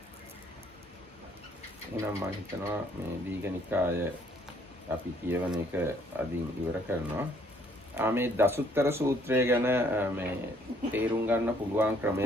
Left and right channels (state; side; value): normal; both; correlation 0.64